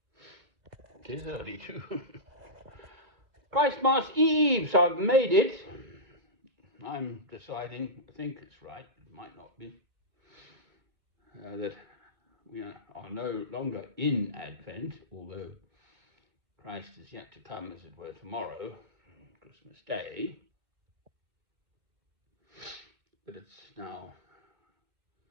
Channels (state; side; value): late; left; 2.1 ms